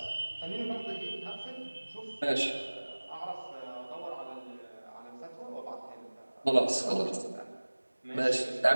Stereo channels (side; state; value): both; inverted; correlation -1.00